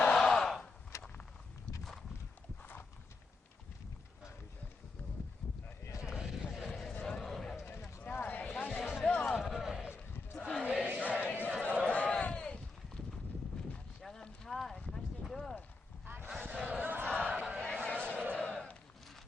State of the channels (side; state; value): right; quieter; 3.6 dB